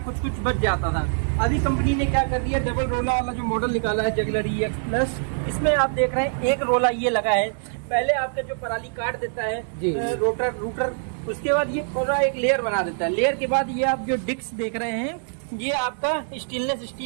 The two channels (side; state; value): left; silent; 62 dB below the other